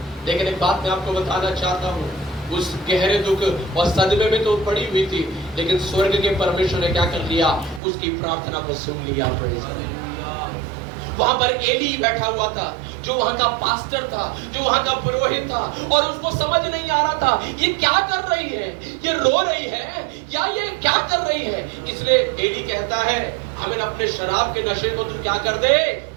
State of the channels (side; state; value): left; drops out; at 7.8 s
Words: लेकिन एक बात मैं आपको बताना चाहता हूँ, उस गहरे दुख और सदमे में तो पड़ी हुई थी, लेकिन स्वर्ग के परमेश्वर ने क्या कर लिया? उसकी प्रार्थना को सुन लिया। वहां पर एली बैठा हुआ था, जो वहां का पास्टर था, जो वहां का पुरोहित था, और उसको समझ नहीं आ रहा था ये क्या कर रही है, ये रो रही है या ये क्या कर रही है। इसलिए एली कहता है, हमें अपने शराब के नशे को तू क्या कर दे?